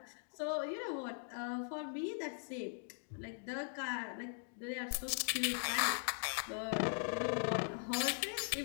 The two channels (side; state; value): right; silent; digital silence